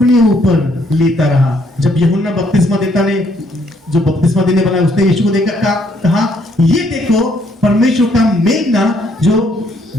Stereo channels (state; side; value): normal; both; correlation 0.69